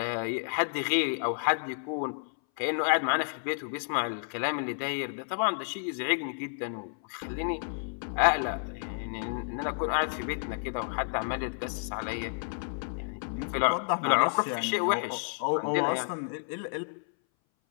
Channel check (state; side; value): silent; right; 57 dB below the other